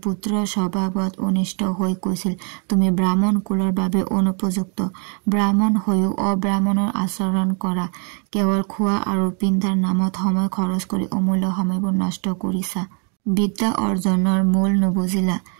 পুত্ৰৰ স্বভাৱত অনিষ্ট হৈ কৈছিল, তুমি ব্ৰাহ্মণ কুলৰ বাবে অনুপযুক্ত, ব্ৰাহ্মণ হৈও অব্ৰাহ্মণৰ আচৰণ কৰা, কেৱল খোৱা আৰু পিন্ধাৰ নামত সময় খৰচ কৰি অমূল্য সময়বোৰ নষ্ট কৰিছা, বিদ্যা অৰ্জনৰ মূল নুবুজিলা।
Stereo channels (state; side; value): quieter; left; 38.9 dB